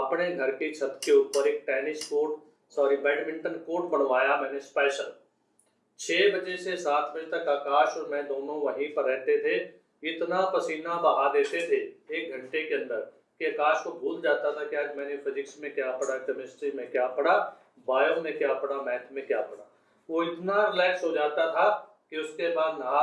घर की छत के ऊपर एक बैडमिंटन कोर्ट बनवाया मैंने स्पेशल। 6 बजे से 7 बजे तक आकाश और मैं दोनों वहीं पर रहते थे। इतना पसीना बहा देते थे 1 घंटे के अंदर कि आकाश को भूल जाता था कि आज मैंने फिजिक्स में क्या पढ़ा, केमिस्ट्री में क्या पढ़ा, बायो में क्या पढ़ा, मैथ में क्या पढ़ा। वो इतना रिलैक्स हो जाता था कि उसके बाद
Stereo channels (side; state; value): both; identical; correlation 1.00